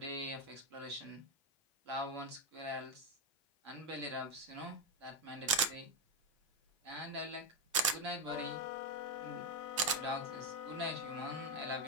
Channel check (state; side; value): normal; both; correlation 0.06